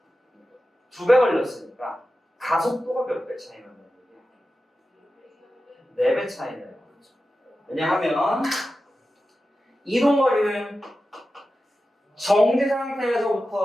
2배 걸렸으니까 가속도가 몇 배 차이 나는 거예요? 4배 차이 나요. 왜냐하면 이동거리는 정지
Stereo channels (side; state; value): both; normal; correlation 0.92